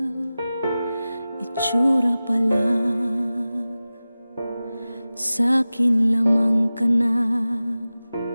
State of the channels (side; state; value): both; inverted; correlation -0.96